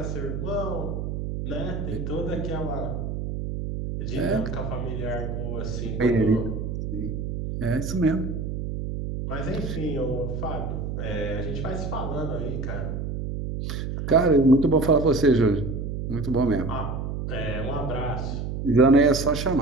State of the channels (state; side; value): noise; right; hum, 4 dB below the sound